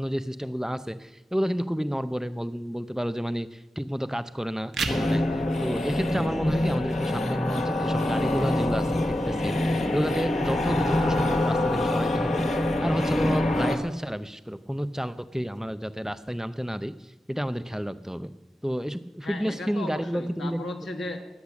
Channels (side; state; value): both; normal; correlation 0.91